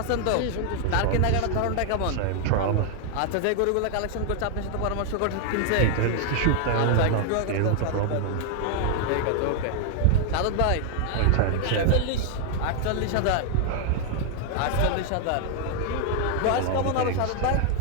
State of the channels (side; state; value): both; different; correlation 0.00